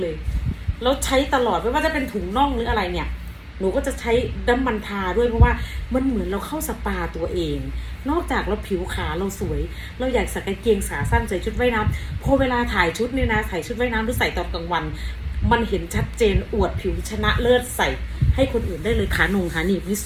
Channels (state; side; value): identical; both; correlation 1.00